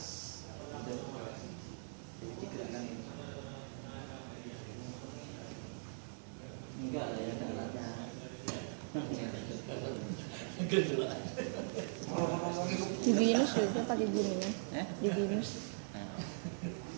Jadi gerakan ini. Enggak lah ya, enggak lah. Di Binus juga pakai gini kan? Di Binus. Nah,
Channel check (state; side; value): silent; left; digital silence